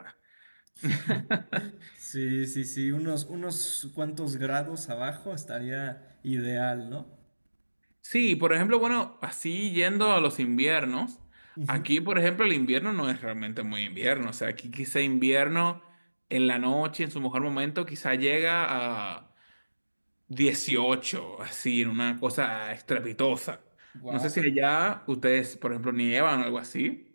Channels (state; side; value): inverted; both; correlation -1.00